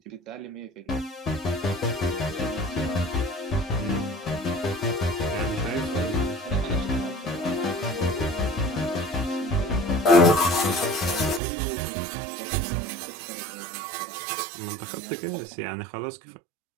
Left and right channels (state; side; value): drops out; left; at 11.4 s